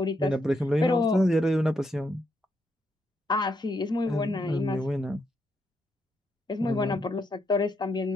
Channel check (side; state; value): both; normal; correlation 0.78